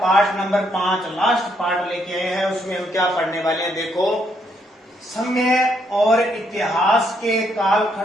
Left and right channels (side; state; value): both; normal; correlation 0.73